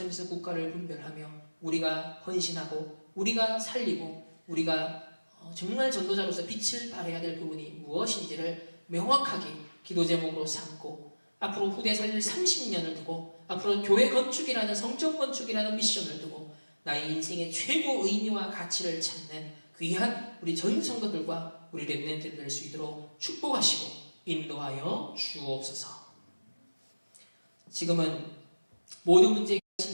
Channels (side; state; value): both; inverted; correlation -1.00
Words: 국가를 분별하며 우리가 헌신하고 우리가 살리고 우리가 정말 전도자로서 빛을 발해야 될 부분이 무엇인지를 명확하게 기도 제목으로 삼고 앞으로 후대 살릴 30년을 두고 앞으로 교회 건축이라는 성전 건축이라는 미션을 두고 나의 인생의 최고 의미와 가치를 찾는 귀한 우리 전 성도들과 우리 렘넌트들 될 수 있도록 축복하시고 인도하여 주옵소서. 지금은 모든 문제에